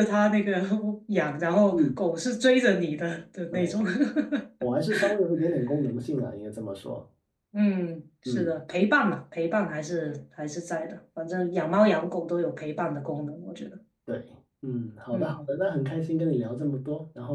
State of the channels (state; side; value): identical; both; correlation 1.00